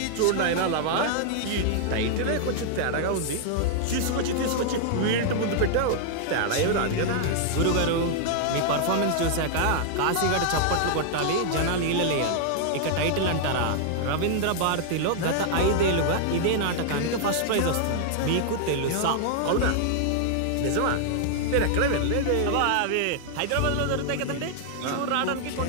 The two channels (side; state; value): both; different; correlation -0.01